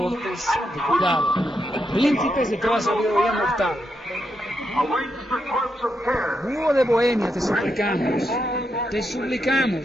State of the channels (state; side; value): normal; both; correlation 0.83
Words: de cuidado, príncipes de toda sabiduría mortal. Búho de Bohemia, te